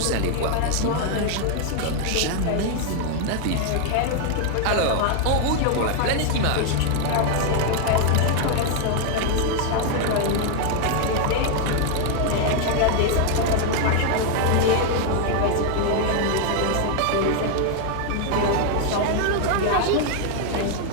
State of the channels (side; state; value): both; different; correlation 0.00